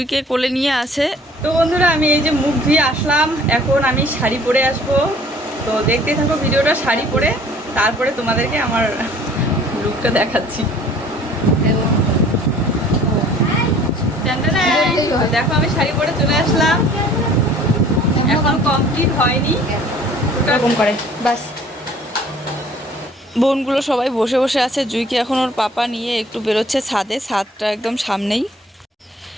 কোলে নিয়ে আসে। তো বন্ধুরা, আমি এই যে মুখ ধুয়ে আসলাম, এখন আমি শাড়ি পরে আসবো। তো দেখতে থাকো ভিডিওটা শাড়ি পরে, তারপরে তোমাদেরকে আমার লুকটা দেখাচ্ছি। দেখো আমি শাড়ি পরে চলে আসলাম, এখন কমপ্লিট হয়নি এরকম করে বাস। বোনগুলো সবাই বসে বসে আছে, জুইকে এখন ওর পাপা নিয়ে একটু বেরোচ্ছে ছাদে, ছাদটা একদম সামনেই।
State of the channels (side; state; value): both; normal; correlation 0.53